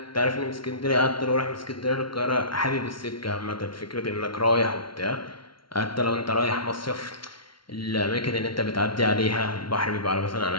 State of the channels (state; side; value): late; right; 0.74 ms